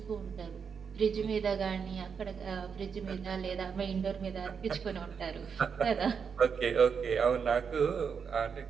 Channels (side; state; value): left; quieter; 6.4 dB